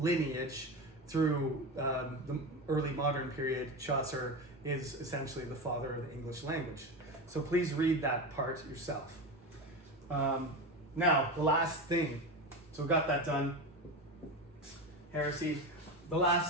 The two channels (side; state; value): both; normal; correlation 0.22